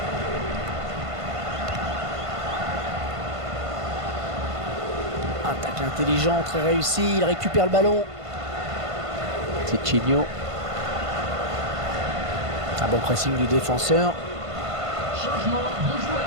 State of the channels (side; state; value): left; late; 1.5 ms